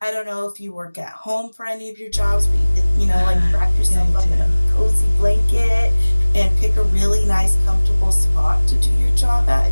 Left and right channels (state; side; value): inverted; both; correlation -1.00